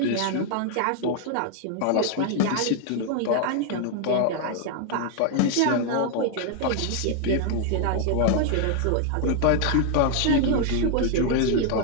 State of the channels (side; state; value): both; different; correlation 0.00